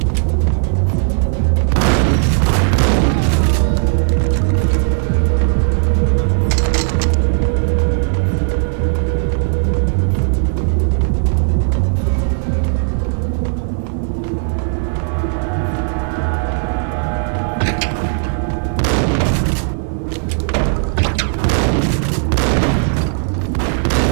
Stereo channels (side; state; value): left; silent; 62 dB below the other